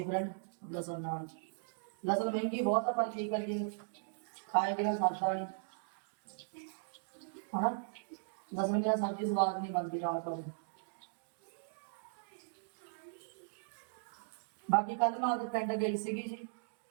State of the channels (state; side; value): silent; left; digital silence